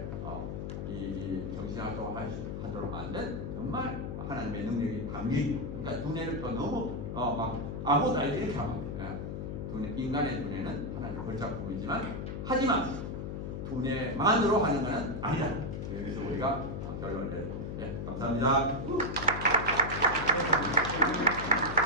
이 정신활동을 하도록 만든 정말 하나님의 능력이 담긴, 그러니까 두뇌를 또 너무 막 아무것도 알지 이렇게 하면 안 돼요. 인간의 두뇌는 하나님의 걸작품이지만 하지만 두뇌만으로 하는 것은 아니다. 여기서 우리가 결론을 내립니다. 네, 감사합니다.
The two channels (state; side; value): noise; left; hum, 5 dB below the sound